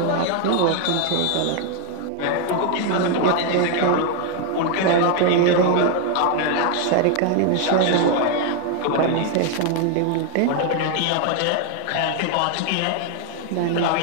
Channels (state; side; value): different; both; correlation 0.01